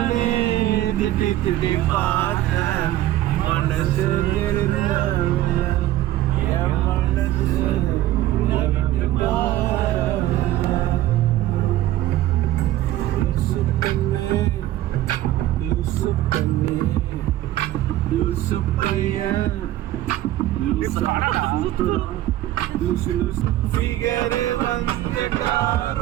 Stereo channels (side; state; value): left; quieter; 14.3 dB